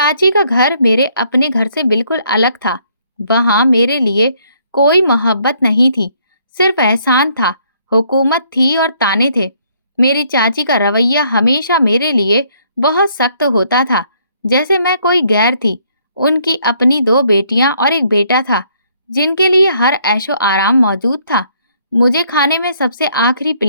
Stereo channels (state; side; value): inverted; both; correlation -0.67